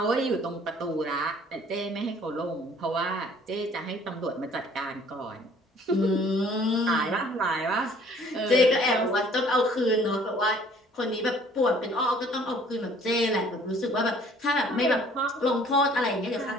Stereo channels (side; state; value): both; normal; correlation 0.55